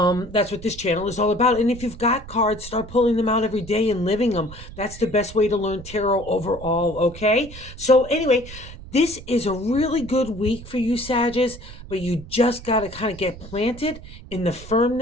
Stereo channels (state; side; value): noise; right; rumble, 15 dB below the sound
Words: what this channel is all about. And if you've got cards, start pulling them out every day and living them. That's the best way to learn tarot overall, okay? So anyway, this is a really good week for you, Sagittarius, but you just got to kind of get planted in the